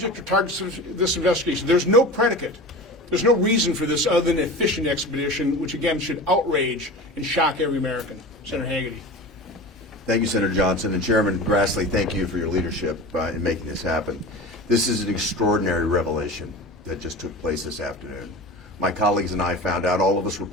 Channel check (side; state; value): both; normal; correlation 0.32